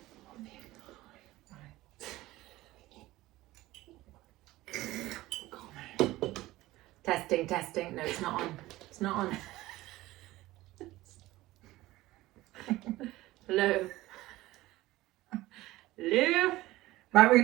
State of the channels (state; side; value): quieter; left; 17.6 dB